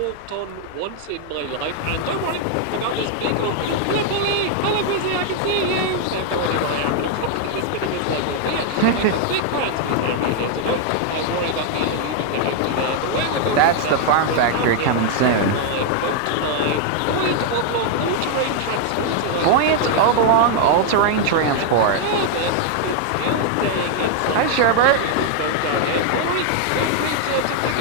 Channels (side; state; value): both; different; correlation 0.00